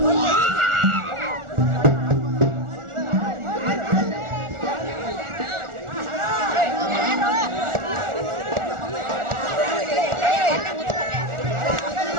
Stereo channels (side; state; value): left; late; 1.4 ms